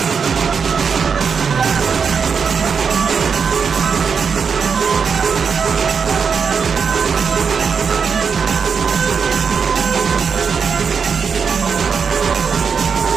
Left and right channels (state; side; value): quieter; left; 6.1 dB